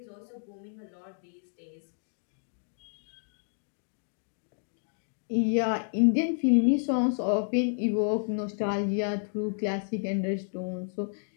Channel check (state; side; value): silent; right; digital silence